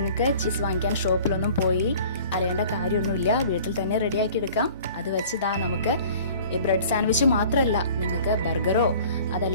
ചീസ് വാങ്ങിക്കാൻ ഷോപ്പിലൊന്നും പോയി അലയേണ്ട കാര്യമൊന്നുമില്ല, വീട്ടിൽ തന്നെ റെഡിയാക്കി എടുക്കാം. അത് വെച്ച് നമുക്ക് ബ്രെഡ് സാൻഡ്വിച്ച് മാത്രമല്ല, നിങ്ങൾക്ക് ബർഗറോ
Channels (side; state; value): both; inverted; correlation -0.47